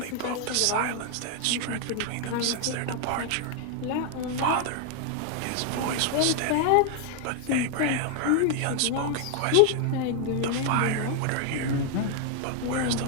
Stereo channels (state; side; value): different; both; correlation 0.00